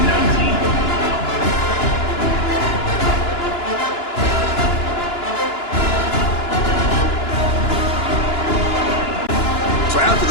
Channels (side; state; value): right; late; 2.9 ms